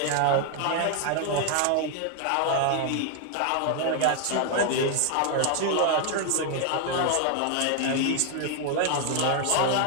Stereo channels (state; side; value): different; both; correlation 0.00